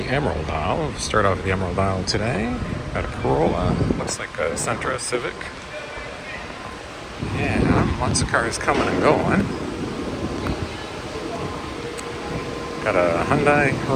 Emerald Isle. We'll start off at the Emerald Isle today. Got a Corolla, looks like a Sentra Civic. Yeah, lots of cars coming and going. Got a Hyundai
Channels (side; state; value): both; identical; correlation 1.00